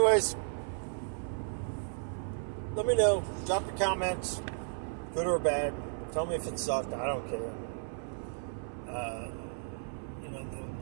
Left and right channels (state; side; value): silent; left; 55 dB below the other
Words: let me know. Drop your comments, good or bad. Tell me if it sucked. I don't care.